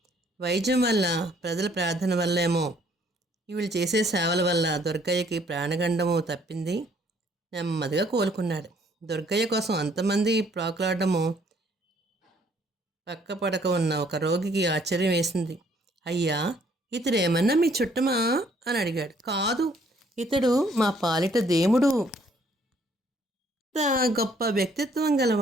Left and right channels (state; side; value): normal; both; correlation 0.63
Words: వైద్యం వల్ల, ప్రజల ప్రార్థన వల్లేమో వీళ్ళు చేసే సేవల వల్ల దుర్గయ్యకి ప్రాణగండము తప్పింది. నెమ్మదిగా కోలుకున్నాడు. దుర్గయ్య కోసం అంతమంది ప్రాకులాడము పక్క పడక ఉన్న ఒక రోగికి ఆశ్చర్యం వేసింది. అయ్యా, ఇతడు ఏమన్నా మీ చుట్టమా అని అడిగాడు. కాదు, ఇతడు మా పాలిట దేవుడు. ఇంత గొప్ప వ్యక్తిత్వం గల